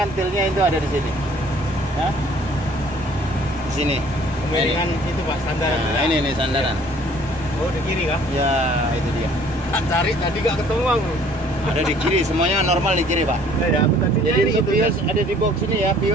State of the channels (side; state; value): both; normal; correlation 0.56